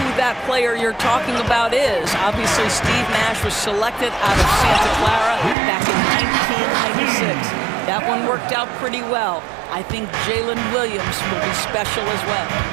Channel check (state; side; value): drops out; left; at 5.6 s